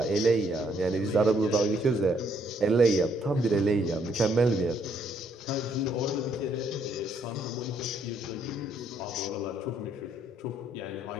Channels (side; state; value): both; normal; correlation 0.70